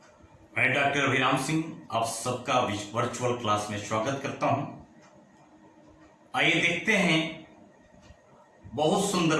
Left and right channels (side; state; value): both; identical; correlation 1.00